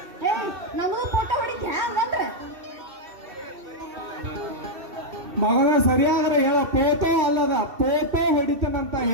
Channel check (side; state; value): left; late; 2.7 ms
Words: ನಮಗೂ ಫೋಟೋ ಹೊಡಿತಿ ಹಂಗಂದ್ರೆ ಮಗನ ಸರಿಯಾದ್ರೆ ಹೇಳ ಪೋಟೋ ಅಲ್ಲದ ಪೋಟೋ ಹೊಡಿತನಂತ